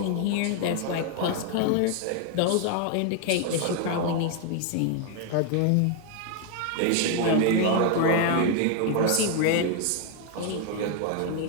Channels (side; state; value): both; different; correlation 0.00